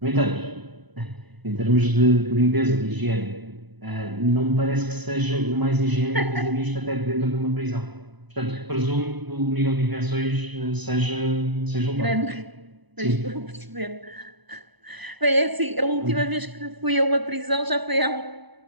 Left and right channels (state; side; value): late; left; 1.0 ms